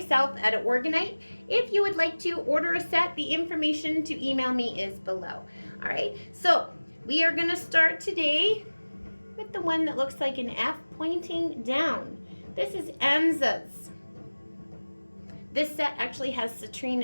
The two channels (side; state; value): both; inverted; correlation -1.00